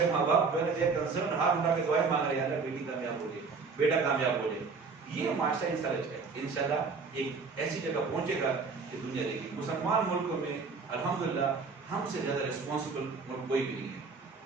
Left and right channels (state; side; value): quieter; left; 4.7 dB